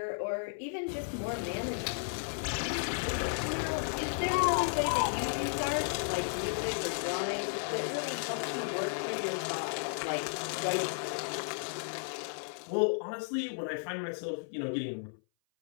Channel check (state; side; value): silent; right; 55 dB below the other